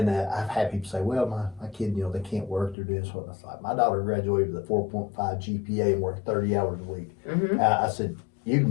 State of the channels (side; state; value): right; drops out; at 2.8 s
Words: I've had people say, well, my kid, they can't work, they're doing this. What? I was like, my daughter graduated with a 4.5 GPA and worked 30 hours a week. Mhm. I said, you can